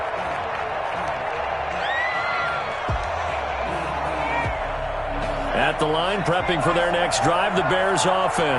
At the line, prepping for their next drive, the Bears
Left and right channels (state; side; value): identical; both; correlation 1.00